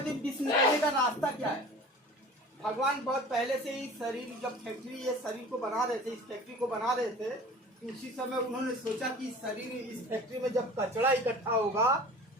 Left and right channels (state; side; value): normal; both; correlation 0.42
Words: विष निकालने का रास्ता क्या है? भगवान बहुत पहले से ही शरीर, जब फैक्ट्री ये शरीर को बना रहे थे, इस फैक्ट्री को बना रहे थे, तो उसी समय उन्होंने सोचा कि शरीर, इस फैक्ट्री में जब कचरा इकट्ठा होगा